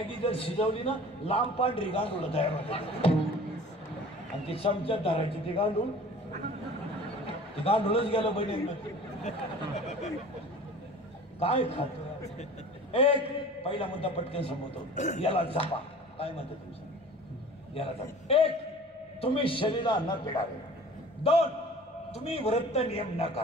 जर शिजवली ना लांब पांढरी गांडूळ तयार होते. आणि ती चमच्यात धरायची ती गांडूळ. ती गांडूळच गेलं बहिणी. काय खातो. एक पहिला मुद्दा पटकन संपवतो. याला जपा. काय म्हणतो तुमचं. याला जपा. 1 तुम्ही शरीराला न पिडावे. 2 तुम्ही व्रत नियम न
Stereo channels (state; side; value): normal; both; correlation 0.43